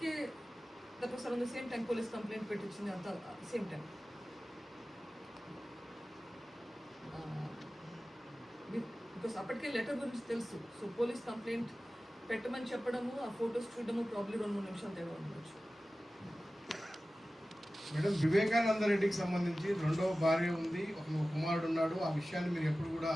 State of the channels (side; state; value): both; normal; correlation 0.96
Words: that was around the same time police complaint పెట్టించింది, అంతా సేమ్ టైం. బికాస్ అప్పటికే లెటర్ గురించి తెలుసు. సో పోలీస్ కంప్లైంట్ పెట్టమని చెప్పడము, ఆ ఫొటోస్ చూడడము ప్రాబ్లీ 2-3 నిమిషాలు తేడా ఉండొచ్చు. మేడం, వివేకానంద రెడ్డికి సంబంధించి రెండవ భార్య ఉంది, ఒక కుమారుడు ఉన్నాడు. ఆ విషయాన్ని మీరు ఎప్పుడు కూడా